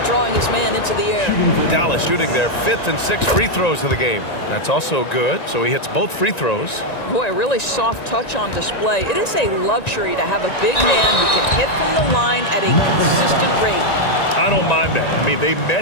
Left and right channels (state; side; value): late; right; 1.9 ms